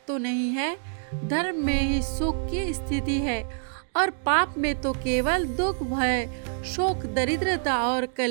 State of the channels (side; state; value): left; silent; digital silence